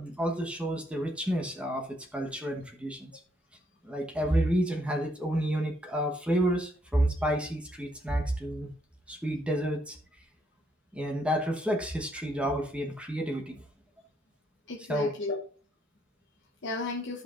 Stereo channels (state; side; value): normal; both; correlation 0.72